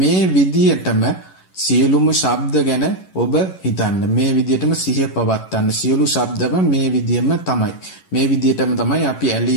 විදිහටම සියලුම ශබ්ද ගැන ඔබ හිතන්න. මේ විදිහටම සිහිය පවත්වන්න. සියලු ශබ්දම මේ විදිහම තමයි. මේ විදිහටම තමයි අපි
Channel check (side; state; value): right; late; 11 ms